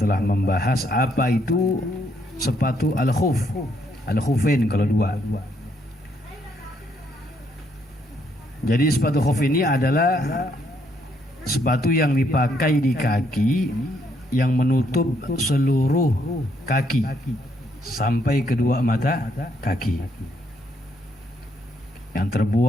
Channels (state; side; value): normal; both; correlation 0.72